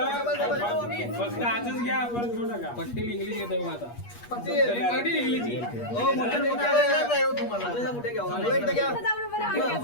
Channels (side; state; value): right; late; 8.4 ms